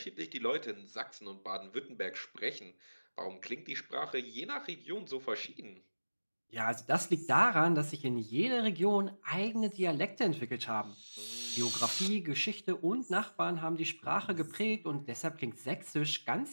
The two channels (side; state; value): both; inverted; correlation -1.00